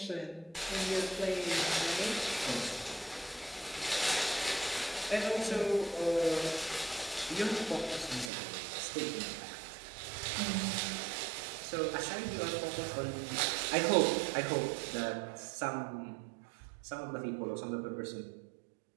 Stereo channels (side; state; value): left; drops out; at 8.3 s